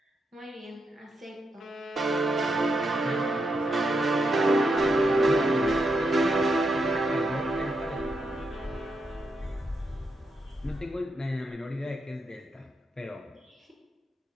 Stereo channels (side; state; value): both; normal; correlation 0.83